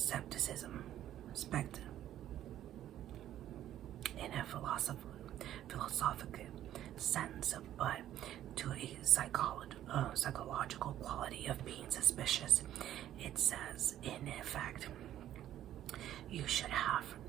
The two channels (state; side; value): quieter; left; 12.1 dB